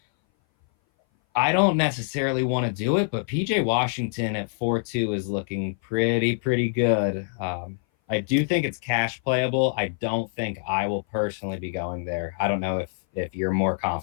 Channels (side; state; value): right; silent; 58 dB below the other